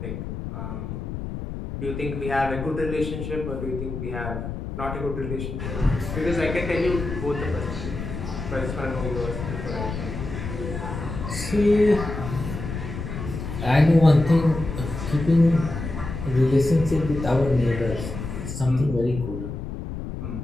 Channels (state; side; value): noise; left; rumble, 6 dB below the sound